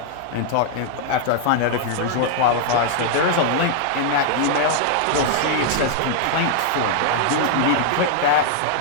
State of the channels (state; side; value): different; both; correlation -0.01